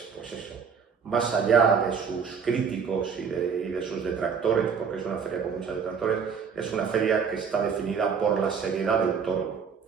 eso, más allá de sus críticos y de sus detractores, porque es una feria con muchos detractores, es una feria que está definida por la seriedad del toro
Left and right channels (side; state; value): left; quieter; 6.3 dB